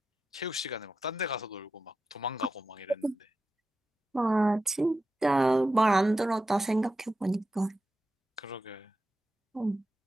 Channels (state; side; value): normal; both; correlation 0.90